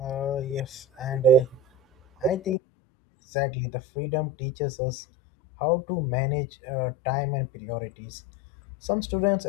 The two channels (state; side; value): drops out; right; at 2.6 s